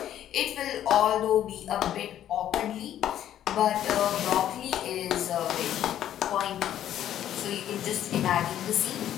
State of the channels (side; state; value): right; quieter; 11.2 dB